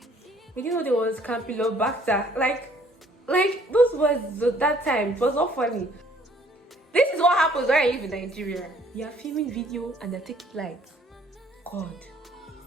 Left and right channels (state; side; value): normal; both; correlation 0.60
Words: there was Campylobacter. Like those words at that time, it was not funny. This is what happens when I live in Nigeria. You are filming video and they're taking lights. God.